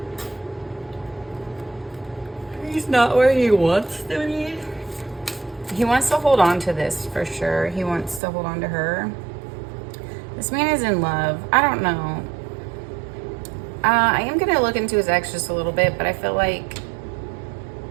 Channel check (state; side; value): drops out; left; at 8.2 s